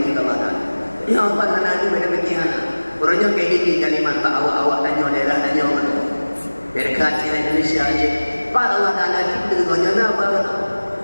kita baca. Ya apa sana itu beda bagian. Orangnya KDP kalimat tak awak tanya daerah tanya mana. Dekat Indonesia aja. Pak Allah Taala kita dengan apa?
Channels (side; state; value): both; inverted; correlation -1.00